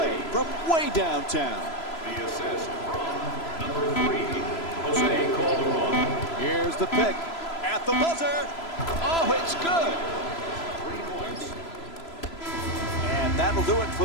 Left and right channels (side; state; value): right; late; 3.0 ms